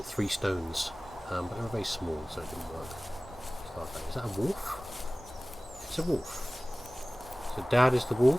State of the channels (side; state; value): both; normal; correlation 0.98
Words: 3 stones. But they were very small, so it didn't work. Is that a wolf? It's a wolf. So Dad is the